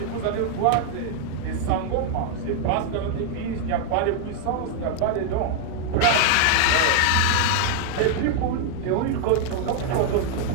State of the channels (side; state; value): both; different; correlation 0.00